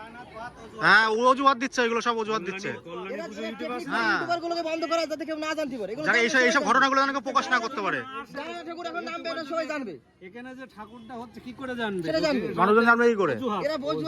হ্যাঁ, অজুহাত দিচ্ছে, এগুলো সব অজুহাত দিচ্ছে। হ্যাঁ, ইউটিউবারগুলোকে বন্ধ করা যাতে কেউ না জানতে পারে, যারা এইসব ঘটনাগুলো যেন কেউ প্রকাশ না করতে পারে। ঠাকুর এখন নাম বের সবাই জানবে। এখানে যে ঠাকুরটা হচ্ছে কি করে জানবে? সেটা জানবে মানুষজন, জানবে কি করে? এরা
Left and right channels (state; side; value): identical; both; correlation 1.00